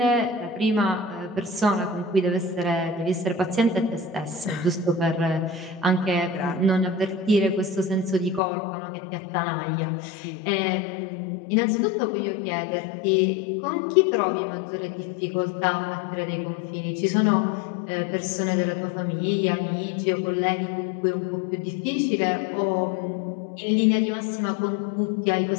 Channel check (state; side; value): drops out; right; at 8.4 s